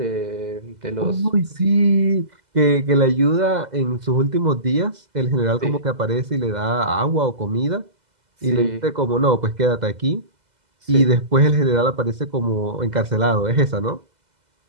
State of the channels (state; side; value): late; left; 2.0 ms